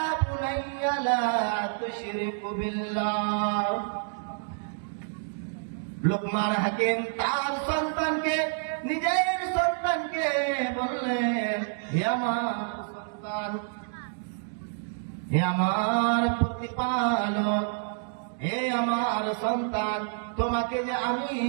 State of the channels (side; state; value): left; silent; digital silence